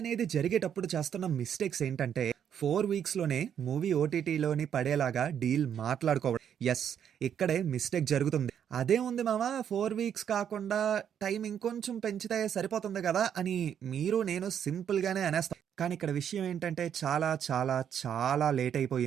జరిగేటప్పుడు చేస్తున్న మిస్టేక్స్ ఏంటంటే 4 వీక్స్‌లోనే మూవీ ఓటీటీలోని పడేలాగా డీల్ మాట్లాడుకోవడం. యెస్, ఇక్కడే మిస్టేక్ జరుగుతుంది. అదేముంది మామ 4 వీక్స్ కాకుండా టైం ఇంకొంచెం పెంచితే సరిపోతుంది కదా! అని మీరు నేను సింపుల్‌గానే అనేస్తాం. కానీ ఇక్కడ విషయం ఏంటంటే చాలా చాలా చాలా లేట్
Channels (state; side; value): quieter; left; 8.8 dB